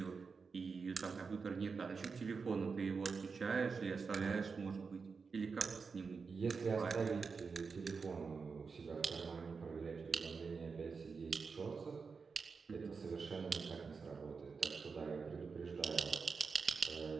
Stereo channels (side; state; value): left; quieter; 5.1 dB